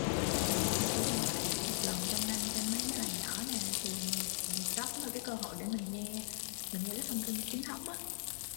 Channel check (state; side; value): silent; right; digital silence